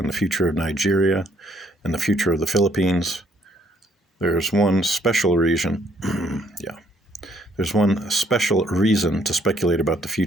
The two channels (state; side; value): normal; both; correlation 0.67